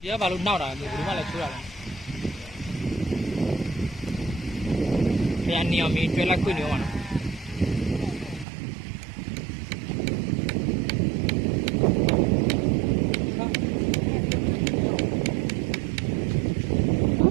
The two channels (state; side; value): drops out; left; at 8.5 s